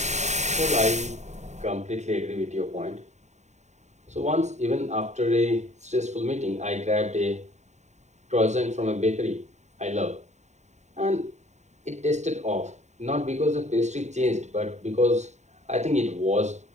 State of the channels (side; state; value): left; late; 0.33 ms